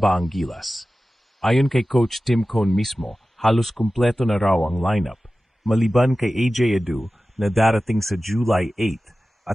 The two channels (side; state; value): both; normal; correlation 0.95